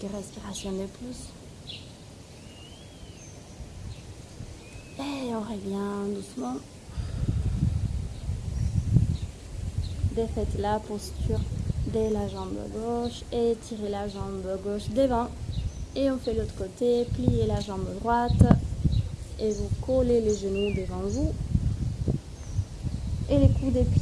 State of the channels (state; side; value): identical; both; correlation 1.00